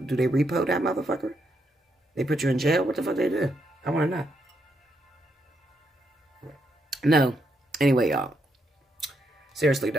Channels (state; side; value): normal; both; correlation 0.79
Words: they repo that motherfucker? They put you in jail? What the fuck they do? I want to know. No. Anyway, y'all. Seriously,